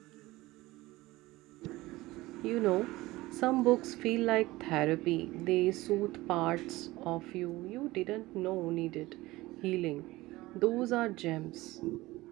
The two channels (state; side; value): quieter; left; 19.1 dB